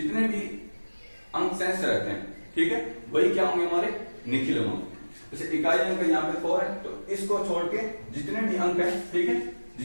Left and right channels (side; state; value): both; inverted; correlation -1.00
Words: भी अंक शेष रहते हैं, ठीक है, वही क्या होंगे? हमारे निखिलम अंक। जैसे इकाई अंक यहाँ पे 4 है, तो इसको छोड़ के जितने भी अंक है, ठीक है,